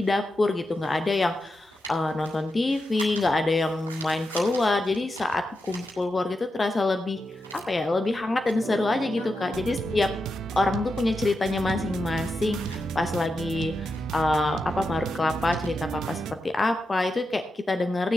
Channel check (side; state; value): both; normal; correlation 0.88